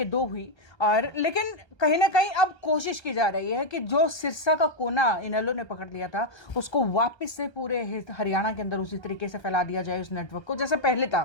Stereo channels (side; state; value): right; late; 1.3 ms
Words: 2 हुई। और लेकिन कहीं ना कहीं अब कोशिश की जा रही है कि जो सिरसा का कोना इनेलो ने पकड़ लिया था उसको वापस से पूरे हरियाणा के अंदर उसी तरीके से फैला दिया जाए उस नेटवर्क को, जैसे पहले